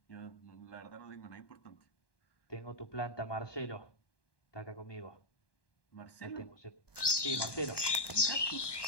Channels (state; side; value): late; right; 1.1 ms